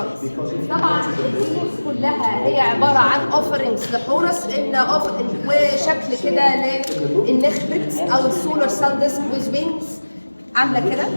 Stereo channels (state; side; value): inverted; both; correlation -1.00